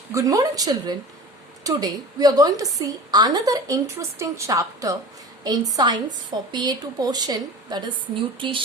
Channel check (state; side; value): normal; both; correlation 0.37